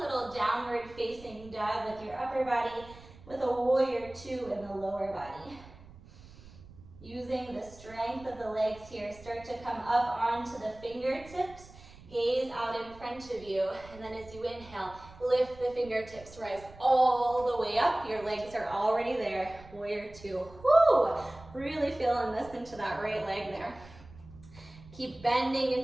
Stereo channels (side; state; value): right; noise; rumble, 20 dB below the sound